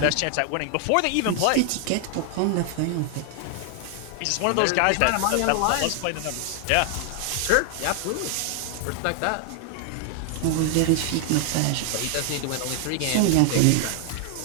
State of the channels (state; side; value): different; both; correlation 0.00